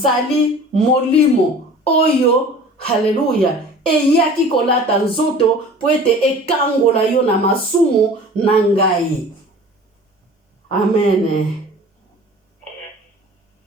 molimo oyo, haleluya, eyaki kolata nzoto po ete ekangola yo na masumu na ngai. Amen.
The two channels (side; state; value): both; normal; correlation 0.43